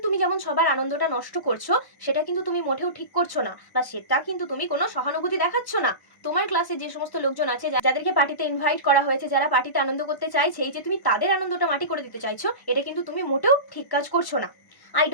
তুমি যেমন সবার আনন্দটা নষ্ট করছো, সেটা কিন্তু তুমি মোটেও ঠিক করছো না, বা সেটা কিন্তু তুমি কোনো সহানুভূতি দেখাচ্ছ না। তোমার ক্লাসে যে সমস্ত লোকজন আছে, যাদেরকে পার্টিতে ইনভাইট করা হয়েছে, যারা পার্টিতে আনন্দ করতে চাইছে, এই যে তুমি তাদের আনন্দটা মাটি করে দিতে চাইছো, এটা কিন্তু তুমি মোটেও ঠিক কাজ করছো না। I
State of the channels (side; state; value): right; late; 1.1 ms